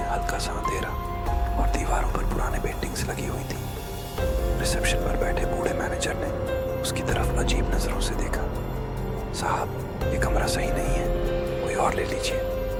हल्का सा अंधेरा और दीवारों पर पुराने पेंटिंग्स लगी हुई थी। रिसेप्शन पर बैठे बूढ़े मैनेजर ने उसकी तरफ अजीब नजरों से देखा। साहब, ये कमरा सही नहीं है, कोई और ले लीजिए,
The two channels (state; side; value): identical; both; correlation 1.00